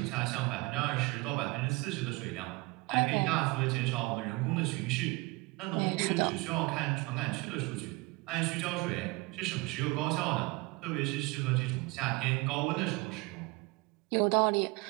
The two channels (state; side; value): quieter; left; 24.4 dB